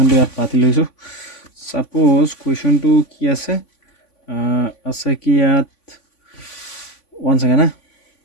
ইয়াত পাতি লৈছোঁ সাপোজ কুৱেশ্যনটো কি আছে কি ইয়াত 1 second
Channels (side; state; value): right; late; 3.5 ms